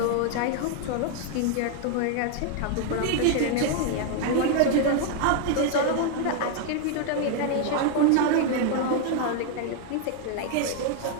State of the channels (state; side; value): different; both; correlation 0.00